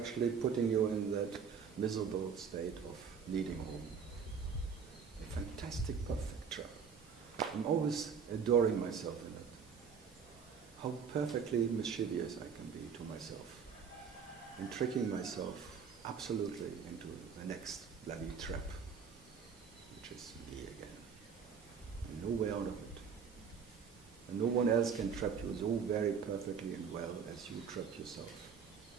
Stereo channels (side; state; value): left; quieter; 6.5 dB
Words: putting you in that miserable state of needing home. A fantastic, perfect trap. I'm always adoring myself in it. How perfectly mischievous I can be to myself. And tricking myself absolutely into the next bloody trap, which is me again. And no way out of it. And no one else can trap you so very perfectly and well as you trap yourself.